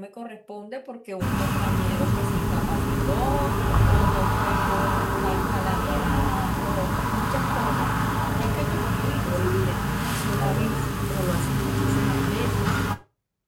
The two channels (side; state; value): both; identical; correlation 1.00